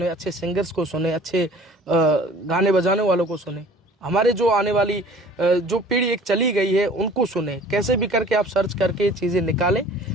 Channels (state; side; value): normal; both; correlation 0.49